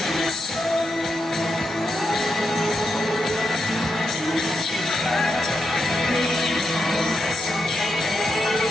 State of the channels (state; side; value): normal; both; correlation 0.84